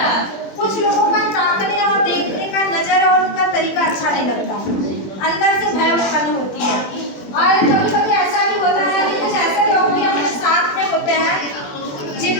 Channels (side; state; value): right; late; 21 ms